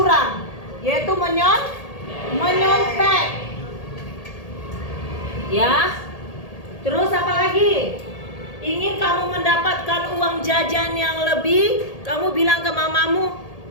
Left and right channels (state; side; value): late; right; 1.8 ms